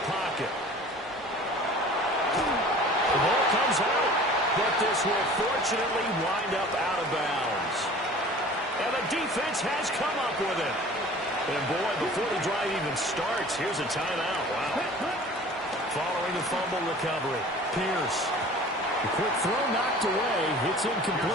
pocket. The ball comes out, but this will fortunately wind up out of bounds. And the defense has come up with it. And boy, before the drive even starts, here's a timeout. Wow. Following the fumble recovery, Pierce. The quick throw knocked away. It's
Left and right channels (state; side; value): normal; both; correlation 0.44